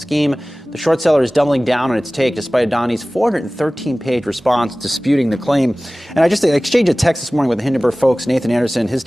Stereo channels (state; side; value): normal; both; correlation 0.98